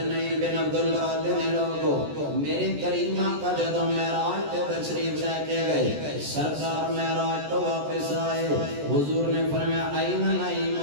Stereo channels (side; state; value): left; late; 14 ms